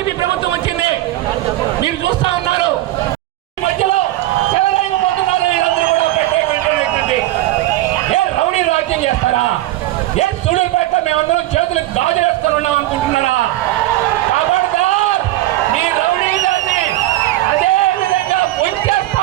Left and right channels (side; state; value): left; quieter; 16.0 dB